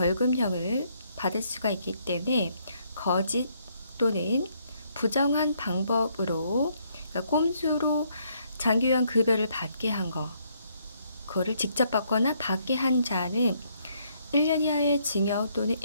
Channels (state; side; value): inverted; both; correlation -0.71